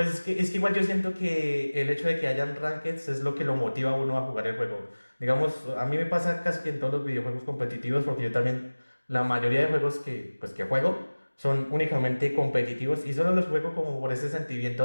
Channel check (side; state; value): both; inverted; correlation -1.00